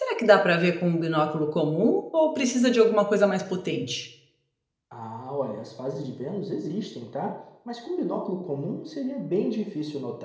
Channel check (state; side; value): identical; both; correlation 1.00